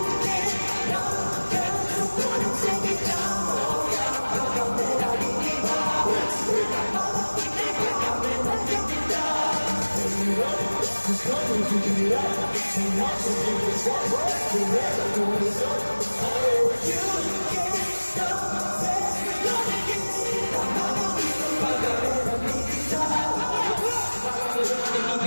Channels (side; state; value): both; inverted; correlation -1.00